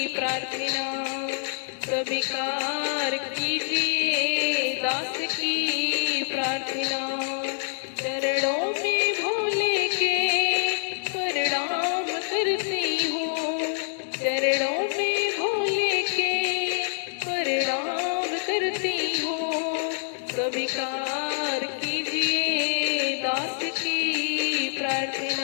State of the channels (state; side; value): silent; right; digital silence